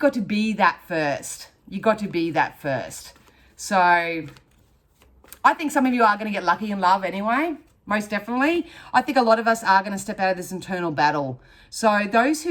to be that first. You've got to be that first. So I think some of you are going to get lucky in love anyway, most definitely. I think a lot of us are going to step out of this internal battle. So those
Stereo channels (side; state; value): both; identical; correlation 1.00